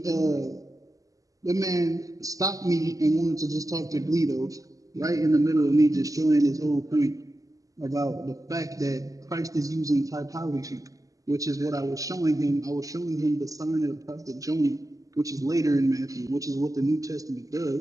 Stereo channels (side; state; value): left; late; 0.17 ms